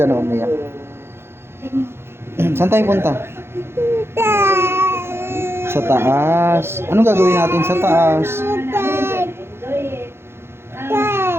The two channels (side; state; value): left; late; 0.12 ms